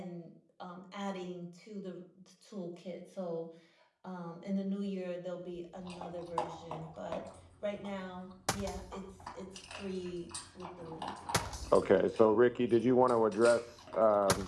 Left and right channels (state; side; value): identical; both; correlation 1.00